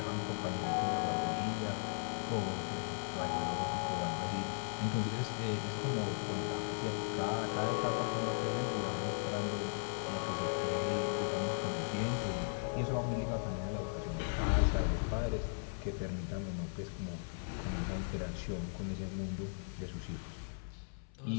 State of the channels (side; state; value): right; silent; 53 dB below the other